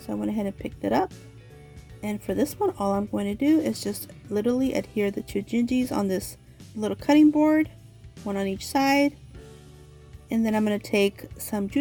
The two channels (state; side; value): identical; both; correlation 1.00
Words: I went ahead and picked it up. And for this one, all I'm going to do is just literally adhere the 2 Gingies on this little cutting board, one on each side, and then I'm going to take some